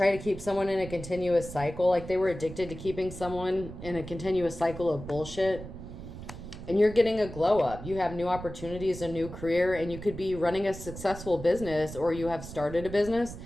to keep someone in a continuous cycle. Like, they were addicted to keeping someone in a continuous cycle of bullshit. And you're getting a glow up. You have new opportunities, a new career, and you could be running a successful business, or you have started a business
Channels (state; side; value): noise; right; rumble, 12 dB below the sound